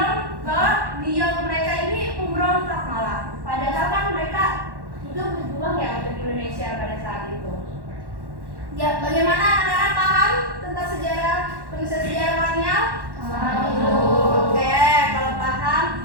bahwa mereka ini pemberontak malah. Padahal kan mereka itu berjuang ya untuk Indonesia pada saat itu. Ya, bagaimana anak-anak paham tentang sejarah penulisan sejarah kolonial? Oke, kalau paham,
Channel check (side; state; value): left; late; 1.1 ms